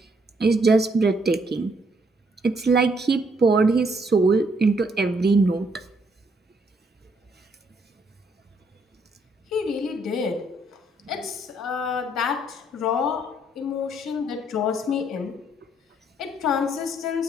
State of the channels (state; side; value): normal; both; correlation 0.70